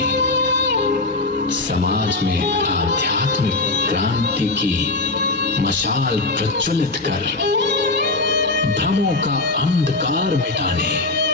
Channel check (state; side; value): quieter; right; 3.3 dB